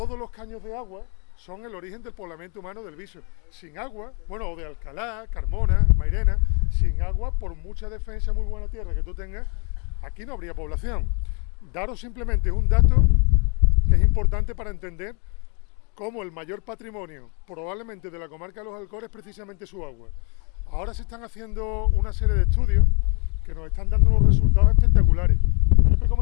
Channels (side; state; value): right; quieter; 35.2 dB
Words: los caños de agua son el origen del poblamiento humano del Viso. Sin agua, bueno, o de Alcalá, Carmona, Mairena, sin agua, por mucha defensa, muy buena tierra que tú tengas, aquí no habría población. Daros simplemente un dato que es importante para entender cómo el mayor patrimonio, probablemente de la comarca de los Alcores, es precisamente su agua. Ahora se están haciendo una serie de estudios que nos están dando unos resultados espectaculares. Yo te